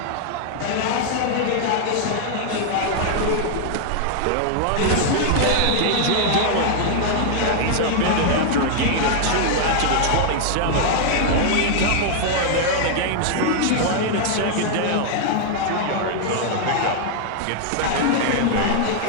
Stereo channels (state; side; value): different; both; correlation 0.00